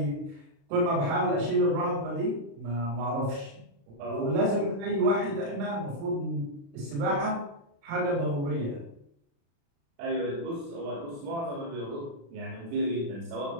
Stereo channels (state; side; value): late; left; 35 ms